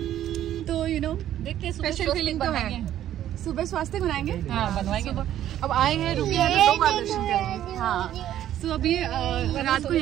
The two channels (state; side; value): quieter; left; 11.8 dB